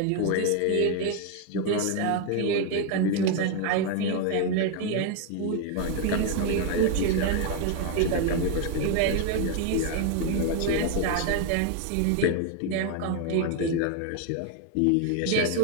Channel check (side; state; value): both; different; correlation 0.01